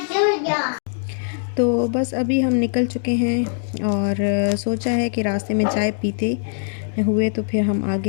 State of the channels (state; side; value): silent; right; digital silence